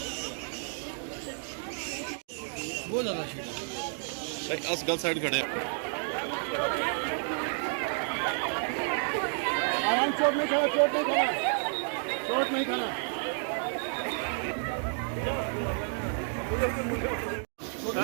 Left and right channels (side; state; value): left; silent; 57 dB below the other